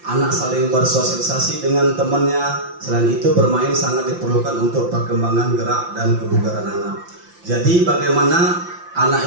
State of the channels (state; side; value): late; left; 5.8 ms